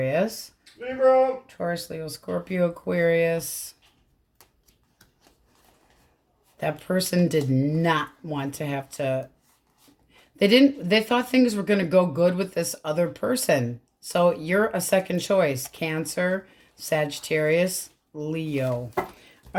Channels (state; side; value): identical; both; correlation 1.00